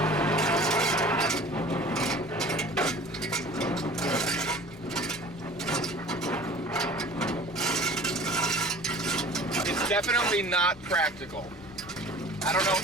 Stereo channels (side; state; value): left; noise; rumble, 21 dB below the sound